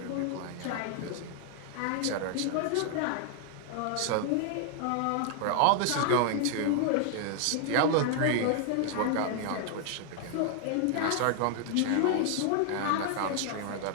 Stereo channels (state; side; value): different; both; correlation 0.00